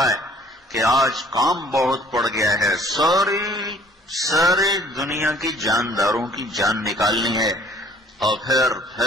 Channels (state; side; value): normal; both; correlation 0.56